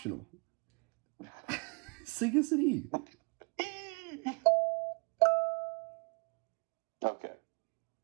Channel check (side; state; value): left; quieter; 33.0 dB